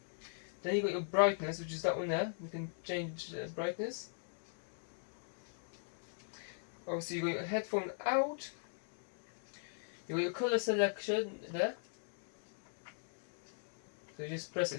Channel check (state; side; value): silent; right; digital silence